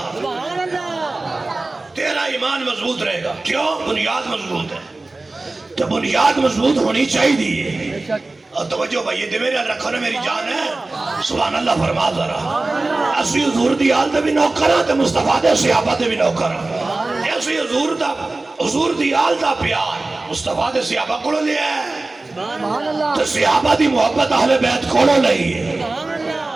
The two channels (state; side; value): quieter; left; 3.2 dB